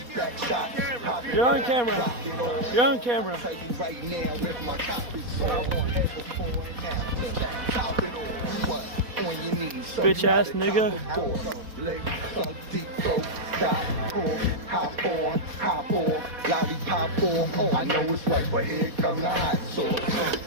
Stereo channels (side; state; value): left; late; 4.2 ms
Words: You're on camera. You're on camera. Bitch ass nigga. Hop on, lollipop on. I know it's right, but here come the hot sauce.